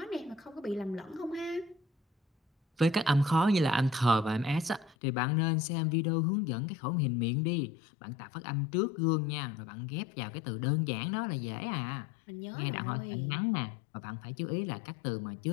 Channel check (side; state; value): right; drops out; at 5.0 s